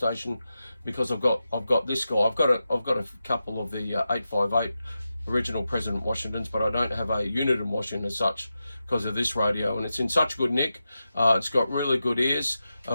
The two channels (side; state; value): both; inverted; correlation -0.90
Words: because I've got this guy. I've got a couple of the 858 original President Washingtons, but I don't have a unit in Washington as such because of this radio, and it's in such good nick. It's got really good ears.